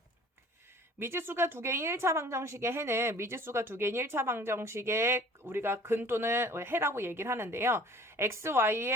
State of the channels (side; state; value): both; normal; correlation 0.49